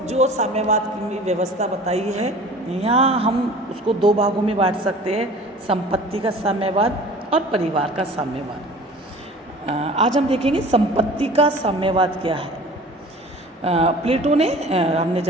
साम्यवाद की व्यवस्था बताई है, यहाँ हम उसको दो भागों में बांट सकते हैं, संपत्ति का साम्यवाद और परिवार का साम्यवाद। आज हम देखेंगे संपत्ति का साम्यवाद क्या है। प्लेटो ने हमने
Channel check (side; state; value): both; normal; correlation 0.44